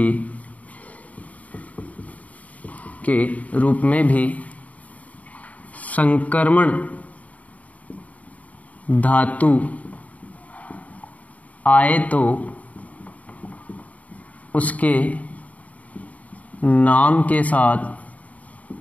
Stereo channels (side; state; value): right; late; 0.070 ms